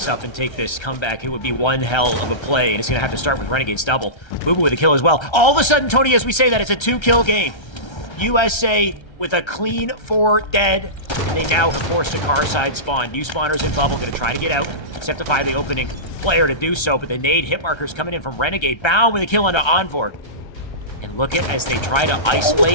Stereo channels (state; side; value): late; right; 1.3 ms